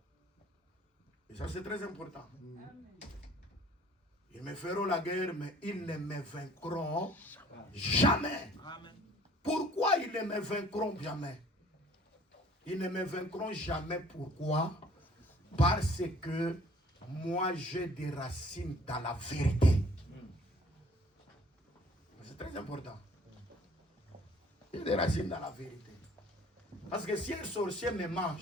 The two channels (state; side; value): normal; both; correlation 0.55